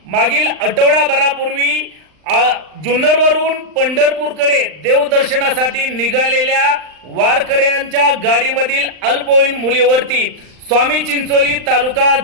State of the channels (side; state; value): left; late; 39 ms